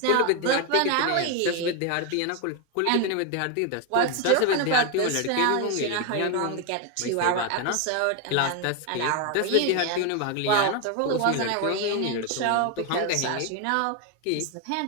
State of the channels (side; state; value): both; different; correlation 0.01